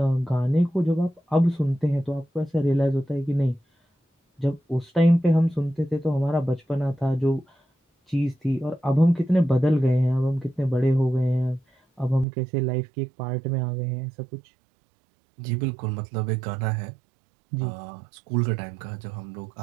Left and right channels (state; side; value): drops out; left; at 12.2 s